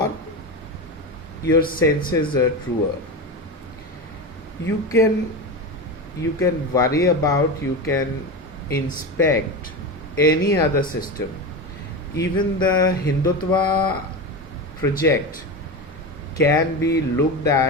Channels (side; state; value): both; normal; correlation 0.21